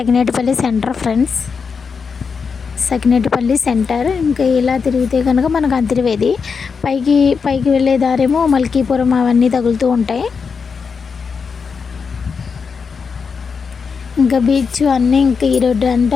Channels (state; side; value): quieter; right; 5.6 dB